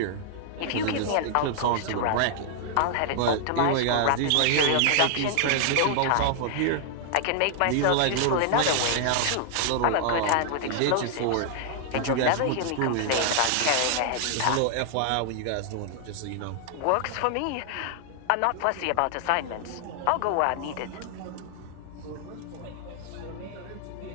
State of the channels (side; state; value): both; different; correlation 0.00